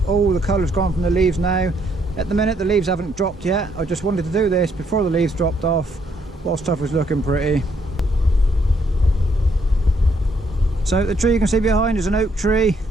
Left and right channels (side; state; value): both; normal; correlation 0.71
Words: all the colour's gone from the leaves now. At the minute the leaves haven't dropped yet. I just wanted to do this before the leaves dropped off while stuff was looking pretty. So the tree you can see behind is an oak tree.